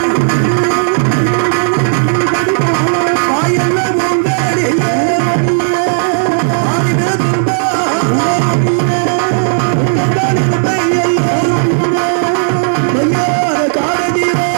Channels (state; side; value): silent; left; digital silence